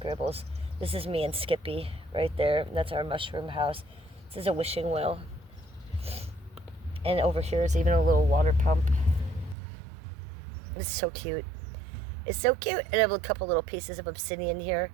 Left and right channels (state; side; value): drops out; left; at 9.6 s